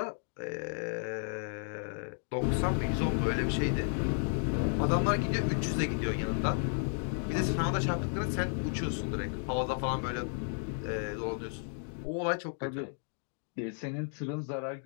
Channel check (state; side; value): silent; right; 56 dB below the other